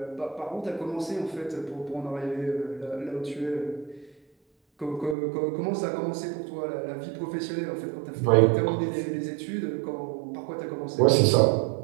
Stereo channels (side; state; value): left; drops out; at 5.2 s